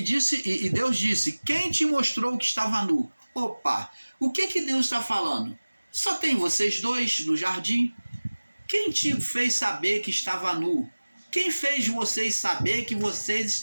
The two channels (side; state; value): both; inverted; correlation -1.00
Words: Deus disse, quem te mostrou que estava nu? Opa, o que Deus está falando? Só tem vocês dois no jardim? Quem te fez saber que estava nu? Quem fez vocês saber que vocês